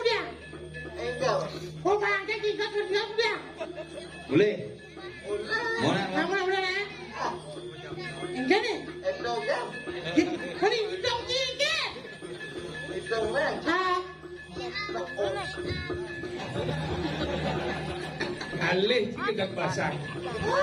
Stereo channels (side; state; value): both; identical; correlation 1.00